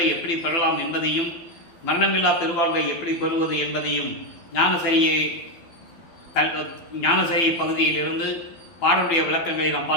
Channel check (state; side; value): late; right; 12 ms